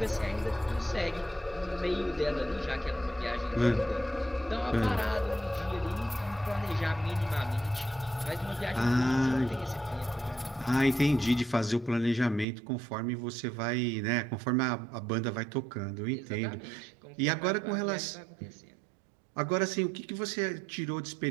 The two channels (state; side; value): drops out; left; at 12.5 s